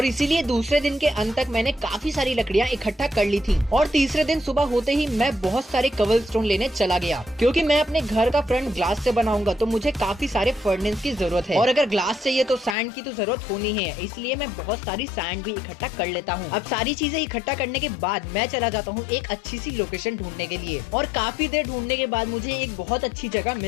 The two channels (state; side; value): drops out; right; at 12.8 s